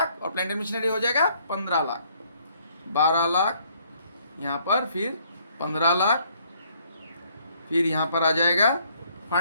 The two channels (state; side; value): inverted; both; correlation -0.65